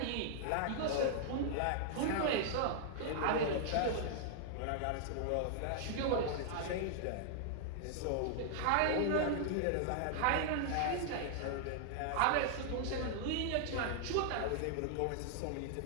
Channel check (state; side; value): different; both; correlation -0.01